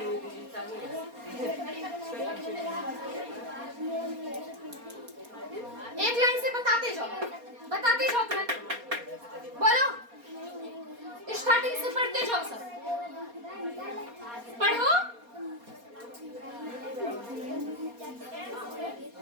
एक लाइन से बताते जाओ तुरंत। बोलो, स्टार्टिंग से पढ़ते जाओ, सब पढ़ो।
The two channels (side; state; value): left; late; 4.2 ms